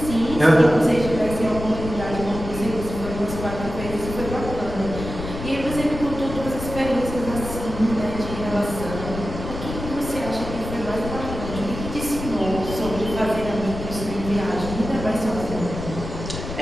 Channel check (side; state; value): left; noise; rumble, 8 dB below the sound